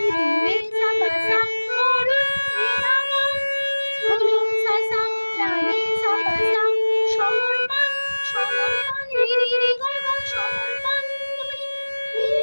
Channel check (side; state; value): both; inverted; correlation -1.00